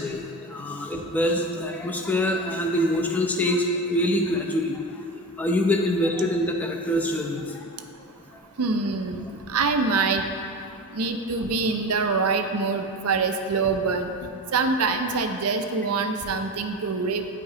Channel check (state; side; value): normal; both; correlation 0.26